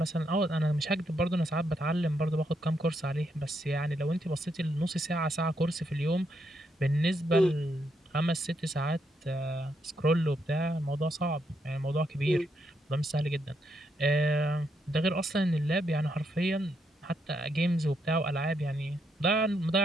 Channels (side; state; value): both; normal; correlation 0.78